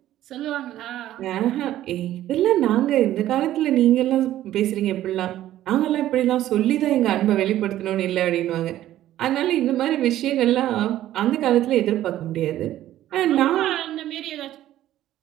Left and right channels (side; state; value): left; quieter; 13.3 dB